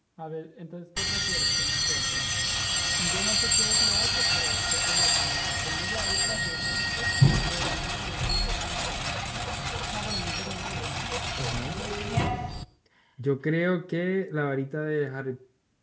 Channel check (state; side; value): identical; both; correlation 1.00